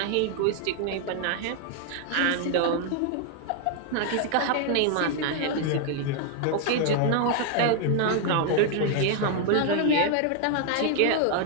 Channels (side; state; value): both; different; correlation 0.00